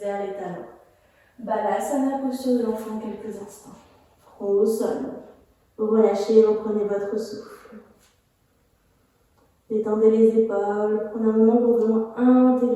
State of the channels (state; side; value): identical; both; correlation 1.00